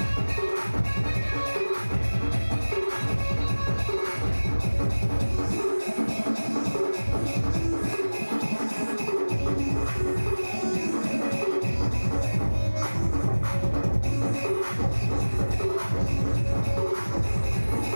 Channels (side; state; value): both; inverted; correlation -1.00